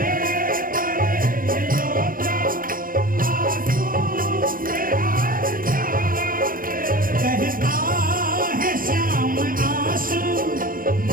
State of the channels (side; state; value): left; late; 0.41 ms